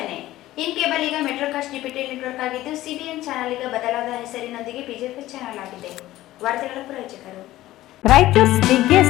ಇನ್ ಕೇಬಲ್ ಈಗ ಮೆಟ್ರೋಕಾಸ್ಟ್ ಡಿಜಿಟಲ್ ನೆಟ್ವರ್ಕ್ ಆಗಿದ್ದು ಸಿಬಿಎನ್ ಚಾನೆಲ್ ಈಗ ಬದಲಾದ ಹೆಸರಿನೊಂದಿಗೆ ಬಿಜೆಪಿ ಚಾನೆಲ್ ಆಗಿದೆ. ವಾರ್ತೆಗಳ ಪ್ರಾಯೋಜಕರು Raichur's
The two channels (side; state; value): right; quieter; 15.6 dB